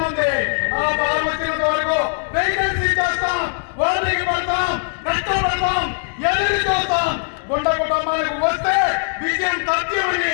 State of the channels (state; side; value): silent; right; digital silence